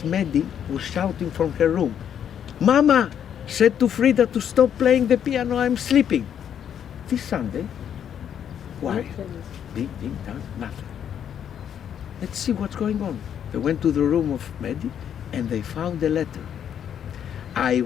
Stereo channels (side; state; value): right; quieter; 9.0 dB